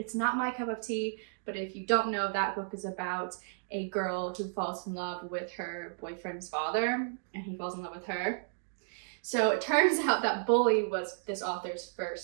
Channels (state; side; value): silent; left; digital silence